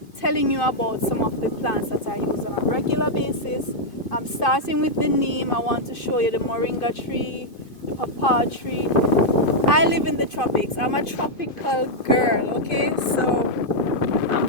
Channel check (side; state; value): right; late; 2.5 ms